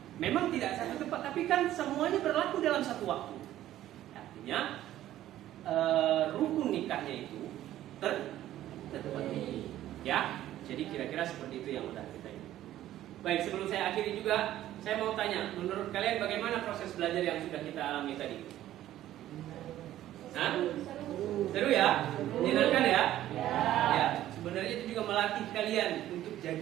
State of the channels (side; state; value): left; quieter; 13.3 dB